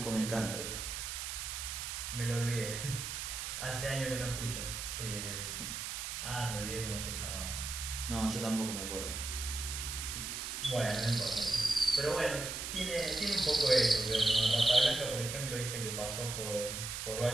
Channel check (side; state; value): right; noise; hiss, 5 dB below the sound